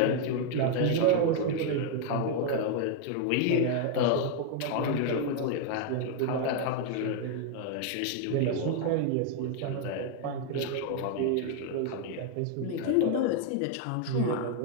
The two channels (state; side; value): different; both; correlation 0.00